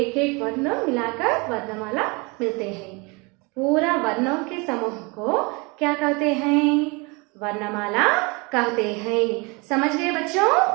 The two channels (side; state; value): left; quieter; 28.4 dB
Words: एक वर्ण मिलाकर वर्णमाला मिलते हैं। पूरा वर्णों के समूह को क्या कहते हैं? वर्णमाला कहते हैं। समझ गए बच्चों?